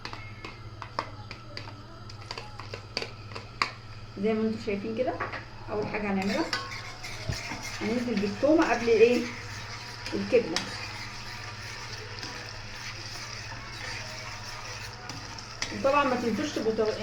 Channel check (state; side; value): identical; both; correlation 1.00